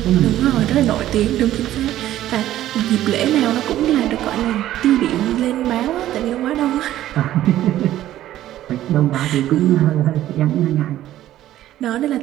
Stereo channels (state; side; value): quieter; left; 13.3 dB